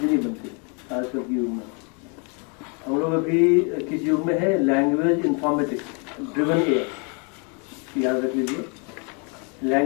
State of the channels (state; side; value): quieter; right; 35.5 dB